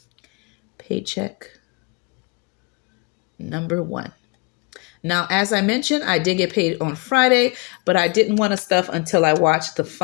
Paycheck number 1. Now, as I mentioned, I did get paid on Friday, but I didn't want to stuff until I watched the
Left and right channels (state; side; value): quieter; right; 28.1 dB